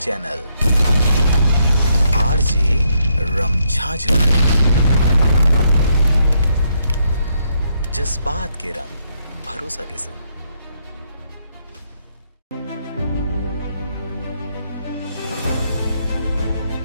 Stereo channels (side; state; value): both; inverted; correlation -0.75